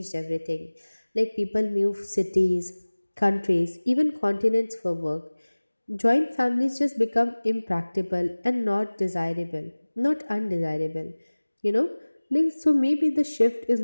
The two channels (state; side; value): inverted; both; correlation -1.00